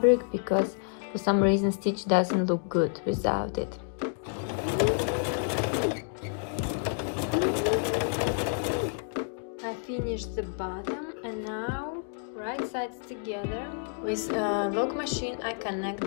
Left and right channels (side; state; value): right; silent; 58 dB below the other